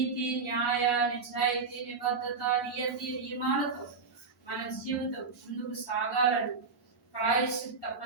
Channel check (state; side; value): quieter; left; 4.7 dB